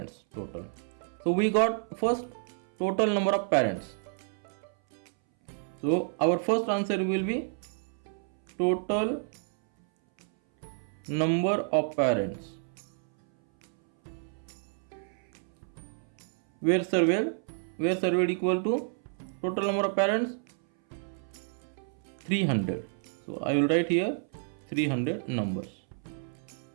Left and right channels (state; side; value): silent; left; 58 dB below the other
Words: total. So we got first total number of parents. So our first answer will be total number of parents were surveyed equal to total number of parents 300. So I will write here 300 numbers.